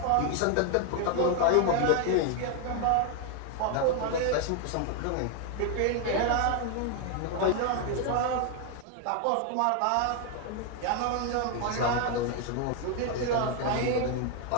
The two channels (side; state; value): both; different; correlation 0.01